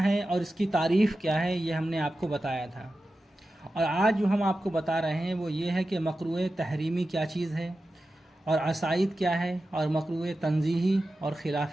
ہیں اور اس کی تعریف کیا ہے، یہ ہم نے آپ کو بتایا تھا۔ اور آج جو ہم آپ کو بتا رہے ہیں وہ یہ ہے کہ مکروہ تحریمی کیا چیز ہے، اور عصائد کیا ہے، اور مکروہ تنزیہی اور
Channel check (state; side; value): normal; both; correlation 0.93